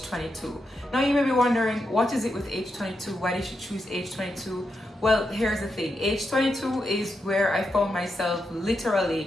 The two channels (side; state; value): both; normal; correlation 0.85